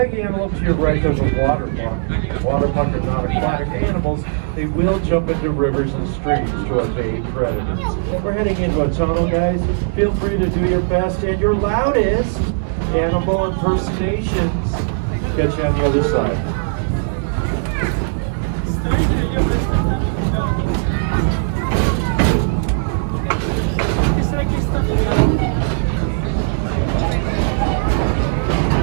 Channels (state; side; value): silent; left; 60 dB below the other